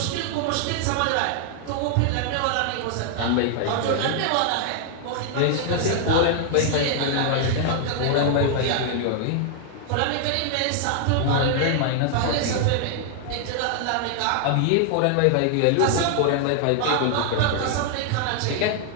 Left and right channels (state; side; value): different; both; correlation 0.00